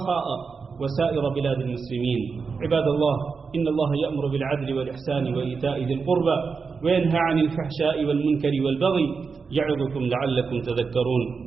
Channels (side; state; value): left; quieter; 5.1 dB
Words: وسائر بلاد المسلمين. عباد الله، إن الله يأمر بالعدل والإحسان وإيتاء ذي القربى وينهى عن الفحشاء والمنكر والبغي يعظكم لعلكم تذكرون.